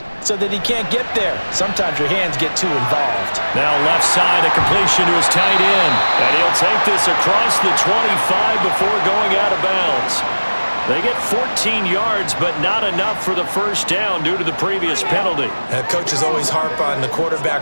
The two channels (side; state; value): both; inverted; correlation -1.00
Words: so that he can't get there. Sometimes your hands get too involved. Now left side, a completion to his tight end. And he'll take this across the 25 before going out of bounds. They get 14 yards, but not enough for the first down due to the previous penalty. Coaches always harp on the